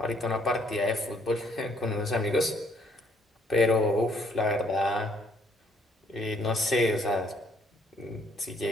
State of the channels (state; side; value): normal; both; correlation 0.67